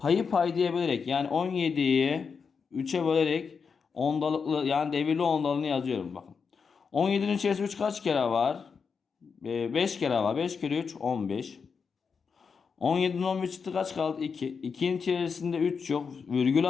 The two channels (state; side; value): quieter; right; 5.7 dB